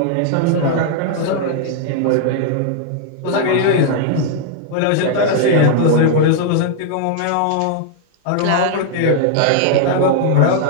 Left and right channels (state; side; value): different; both; correlation 0.00